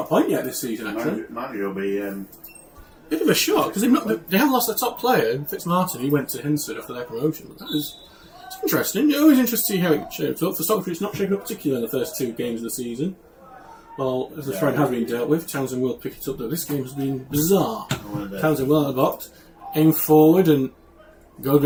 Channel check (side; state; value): both; identical; correlation 1.00